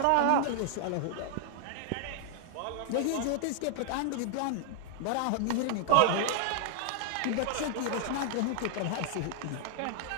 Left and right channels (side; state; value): both; different; correlation -0.01